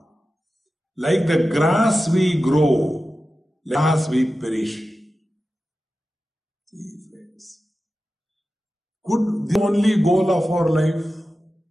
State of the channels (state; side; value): normal; both; correlation 0.93